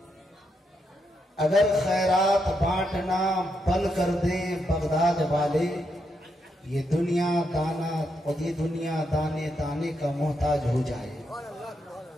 اگر خیرات بانٹنا بند کر دے بغداد والے، یہ دنیا دانے دانے کا محتاج ہو جائے.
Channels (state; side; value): normal; both; correlation 0.81